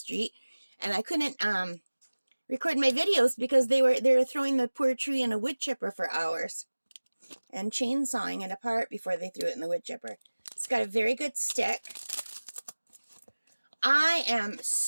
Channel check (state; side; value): inverted; both; correlation -1.00